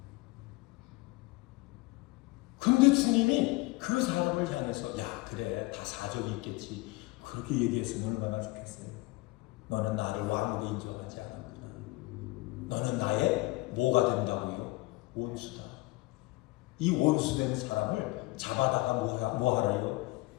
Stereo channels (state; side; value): quieter; right; 22.3 dB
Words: 근데 주님이 그 사람을 향해서 그래 다 사정이 있겠지. 그렇게 얘기했으면 얼마나 좋겠어요. 너는 나를 왕으로 인정하지 않았구나. 너는 나의 뭐가 된다고요? 원수다. 이 원수된 사람을 잡아다가 뭐 하래요?